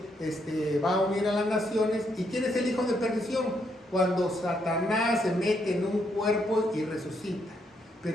va a unir a las naciones. ¿Y quién es el hijo de perdición? Cuando Satanás se mete en un cuerpo y resucita.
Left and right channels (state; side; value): normal; both; correlation 0.76